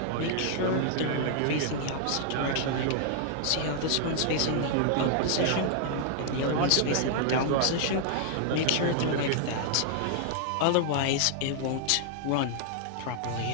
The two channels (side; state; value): both; different; correlation -0.01